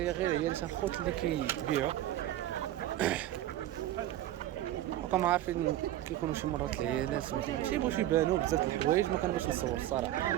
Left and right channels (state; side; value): quieter; left; 13.7 dB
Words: غير هي اللي الخوت اللي كيبيعوا. وكما عارفين كيكونوا شي مرات العيالات ما كيبغوش يبانوا بزاف د الحوايج، ما كنبغيش نصور الصراحه.